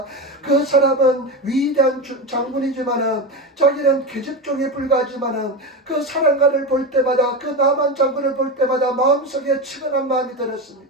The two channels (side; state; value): both; normal; correlation 0.19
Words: 그 사람은 위대한 장군이지만은 자기는 계집종에 불과하지만은 그 사랑가를 볼 때마다 그 나만 장군을 볼 때마다 마음속에 치근한 마음이